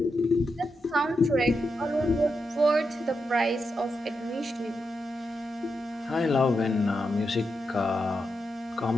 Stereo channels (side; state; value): both; normal; correlation 0.86